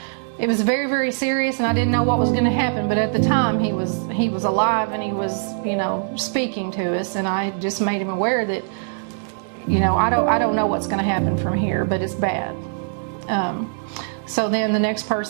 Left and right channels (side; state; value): left; silent; digital silence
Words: it was very, very serious, and I didn't know what was going to happen. But at the time, he was alive, and he was, you know, speaking to us, and I just made him aware that, you know, I don't know what's going to happen from here, but it's bad. So then the next